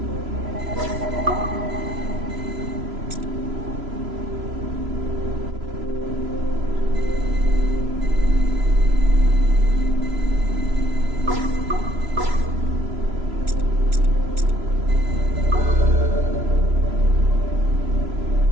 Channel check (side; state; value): left; late; 3.0 ms